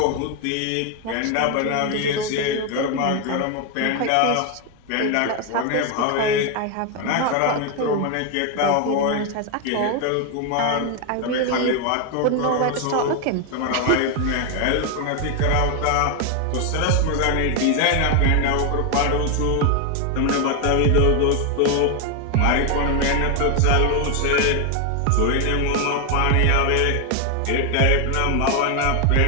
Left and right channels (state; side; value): different; both; correlation 0.01